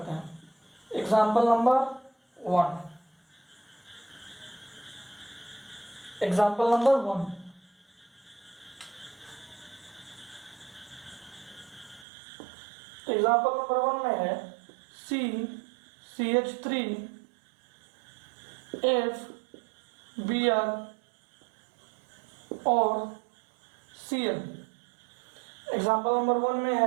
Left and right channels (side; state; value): left; drops out; at 12.1 s